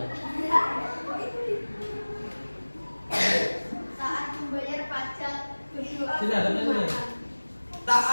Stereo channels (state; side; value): inverted; both; correlation -1.00